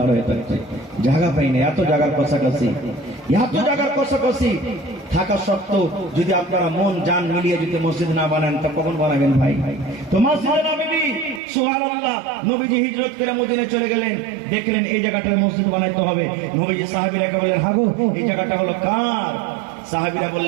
হয়ে থাকছে, জায়গা পাই না। এত জায়গার কষাকষি, এত জায়গার কষাকষি থাকা সত্ত্বেও যদি আপনারা মন জান মিলিয়ে যদি মসজিদ না বানান তা কখন বানাবেন ভাই? তো মসজিদে নববী, সুবহানাল্লাহ, নবীজি হিজরত করে মদিনায় চলে গেলেন, দেখলেন এই জায়গাটায় মসজিদ বানাইতে হবে। নবীজি সাহাবীরা বললেন হাগো এই জায়গাটা হলো কার? সাহাবীরা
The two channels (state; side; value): drops out; left; at 11.4 s